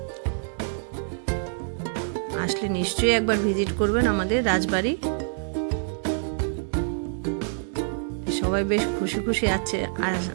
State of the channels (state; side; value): silent; left; digital silence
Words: আসলে নিশ্চয়ই একবার ভিজিট করবেন আমাদের রাজবাড়ি। সবাই বেশ খুশি খুশি আছে